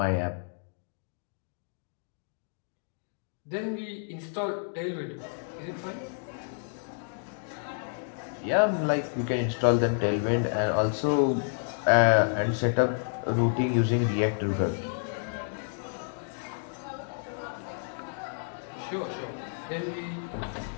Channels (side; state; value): right; silent; digital silence